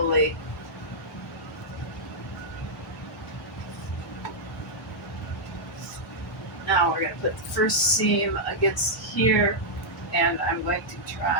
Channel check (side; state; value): both; normal; correlation -0.06